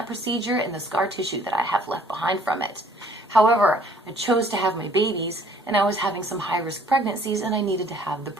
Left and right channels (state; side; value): normal; both; correlation 0.59